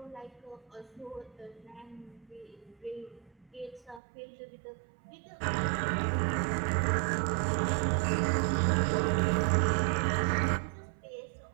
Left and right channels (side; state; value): left; drops out; at 4.0 s